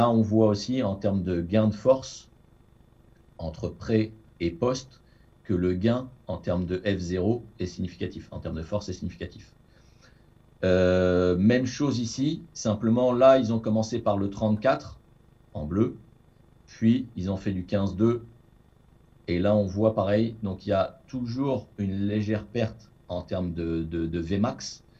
on voit aussi en termes de gain de force entre pré et post que le gain en termes de F0 est significatif, en termes de force est significatif. Même chose ici, simplement là, ils ont commencé par le 34 en bleu, puis ils ont fait du 15-2, et là on voit pareil, donc il y a toujours une légère perte en termes de Vmax,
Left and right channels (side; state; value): both; identical; correlation 1.00